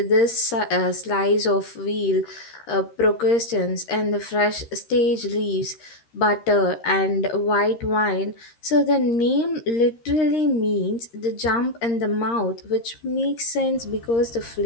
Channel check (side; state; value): right; late; 13 ms